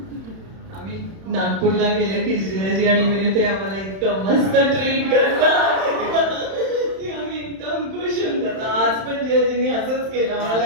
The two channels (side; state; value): left; late; 31 ms